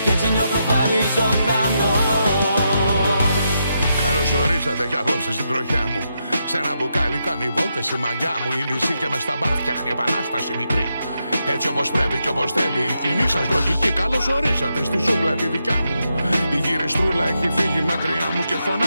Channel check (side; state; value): both; inverted; correlation -0.83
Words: Και έτσι νιώθω πάλι ζωντανός. Καλώς ορίσατε κι απόψε στην τροχιά μου. Σε ένα μπουκάλι κάνει βόλτες η μαγιά μου. Η λύση και μες στα μπαρ φτιάχνει επανάσταση μικρή. Έτσι όπως πρέπει και όπως θέλει η κοινή σας λογική. Καλώς ορίσατε στη ζούγκλα τη δικιά μου. Η γυριστρούλα έχει φύγει μακριά μου και